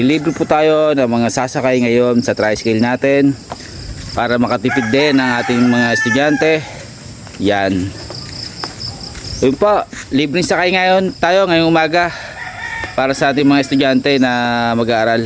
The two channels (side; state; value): both; identical; correlation 1.00